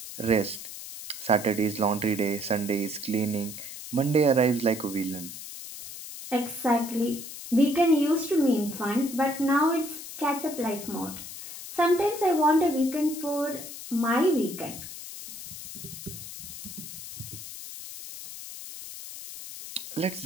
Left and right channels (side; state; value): left; noise; hiss, 11 dB below the sound